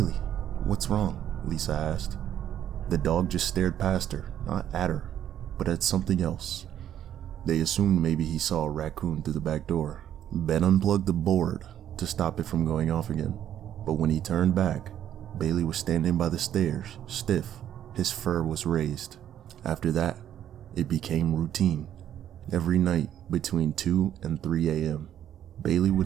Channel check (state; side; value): quieter; left; 10.6 dB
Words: what's wrong? Lisa asked. The dog just stared past her, not at her, but at something else. They assumed maybe he saw a raccoon through the back door. Ben unplugged the board to stop it from going off again, but when he turned back, Bailey was standing by the stairs, stiff. His fur was raised. After that, it became routine. Every night between 2 and 3 a.m., Bailey